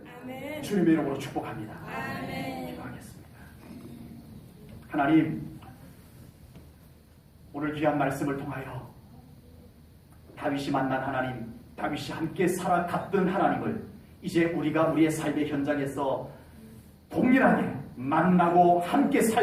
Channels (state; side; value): identical; both; correlation 1.00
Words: 아멘, 주님의 이름으로 축복합니다. 아멘, 기도하겠습니다. 하나님, 오늘 귀한 말씀을 통하여 다윗이 만난 하나님, 다윗이 함께 살아갔던 하나님을 이제 우리가 우리의 삶의 현장에서 동일하게 만나고 함께